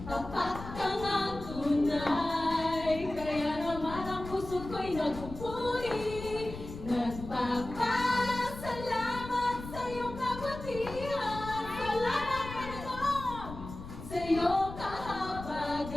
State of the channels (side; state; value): left; noise; rumble, 11 dB below the sound